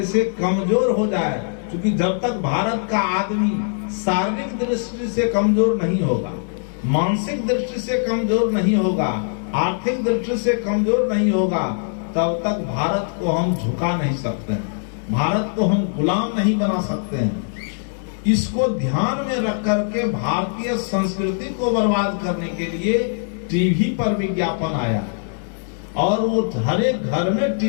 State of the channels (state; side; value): silent; right; digital silence